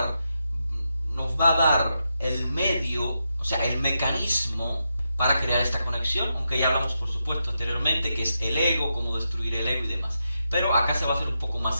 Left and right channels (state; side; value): inverted; both; correlation -0.85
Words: nos va a dar el medio, o sea, el mecanismo para crear esta conexión, aunque ya hablamos, por supuesto, anteriormente, que es el ego, cómo destruir el ego y demás. Pero acá se va a hacer un poco